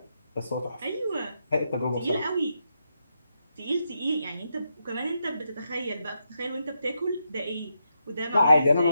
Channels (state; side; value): inverted; both; correlation -0.83